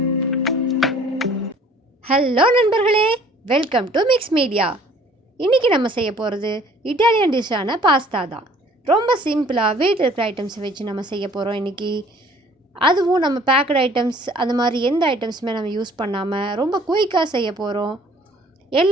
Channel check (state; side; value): normal; both; correlation 0.54